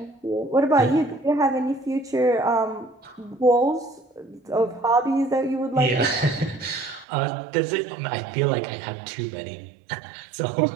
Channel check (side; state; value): left; drops out; at 7.1 s